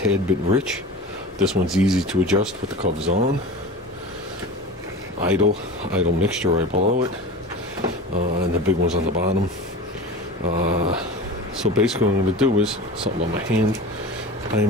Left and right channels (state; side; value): normal; both; correlation 0.33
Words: bit rich. This one's easy to adjust with the covers on. Idle mixture right below it, and the big one's on the bottom. So basically what I'm going to do is, something on my hand,